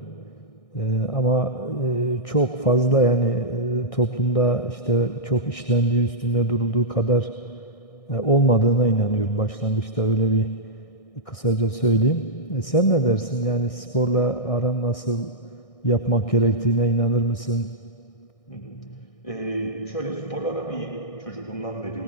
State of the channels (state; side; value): late; right; 1.6 ms